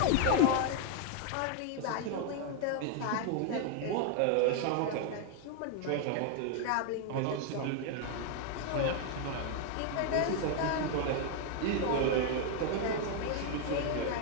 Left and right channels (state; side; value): different; both; correlation 0.00